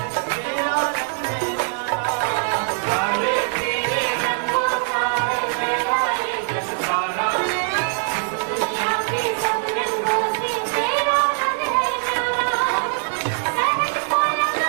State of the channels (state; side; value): silent; left; 56 dB below the other